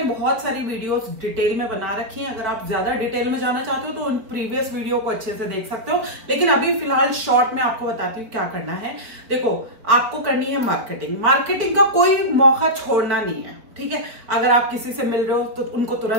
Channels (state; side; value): late; left; 4.3 ms